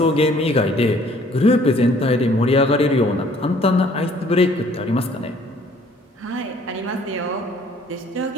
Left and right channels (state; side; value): normal; both; correlation 0.58